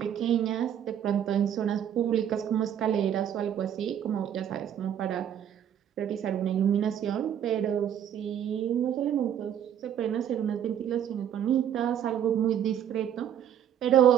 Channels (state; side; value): quieter; left; 9.7 dB